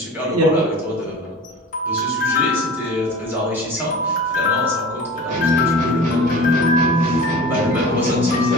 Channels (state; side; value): normal; both; correlation 0.37